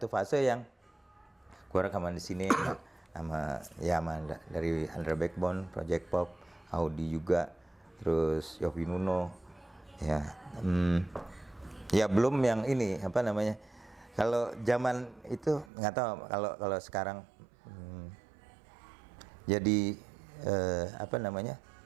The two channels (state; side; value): drops out; left; at 15.7 s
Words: fase yang gue rekaman di sini sama dari Andra Backbone, Project Pop, Audi juga, terus Yofi Nuno, ya belum yang ini kalau zaman itu nggak tahu, kalau sekarang jadi